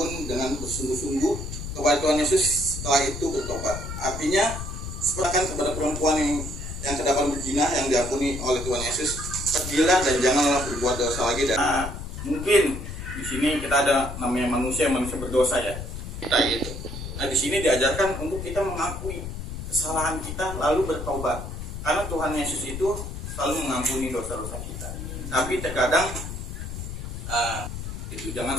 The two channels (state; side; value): noise; left; rumble, 7 dB below the sound